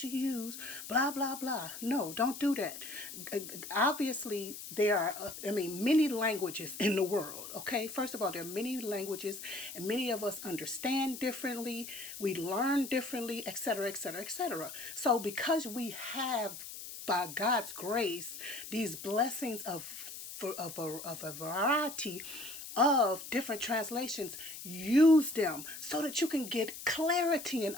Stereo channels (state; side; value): noise; left; hiss, 11 dB below the sound